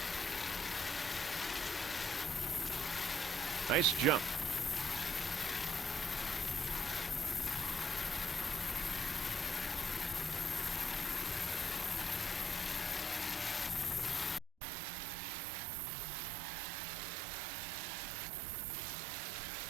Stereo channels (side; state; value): left; drops out; at 14.5 s